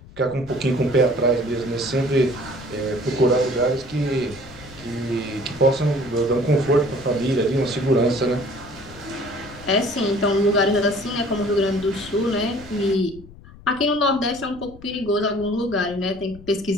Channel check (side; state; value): left; noise; rumble, 20 dB below the sound